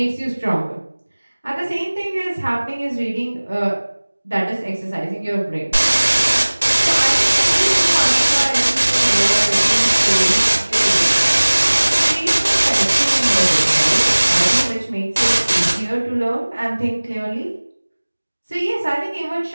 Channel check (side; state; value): both; inverted; correlation -1.00